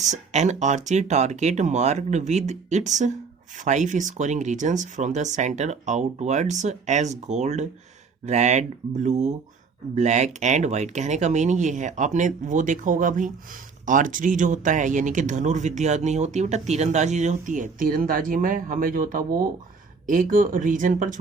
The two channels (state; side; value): quieter; left; 5.0 dB